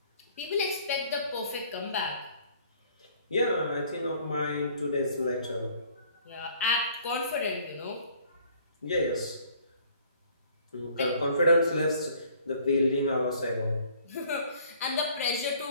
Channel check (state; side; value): inverted; both; correlation -0.57